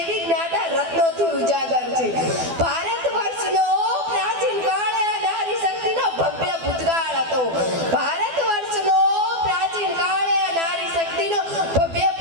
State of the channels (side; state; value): left; late; 12 ms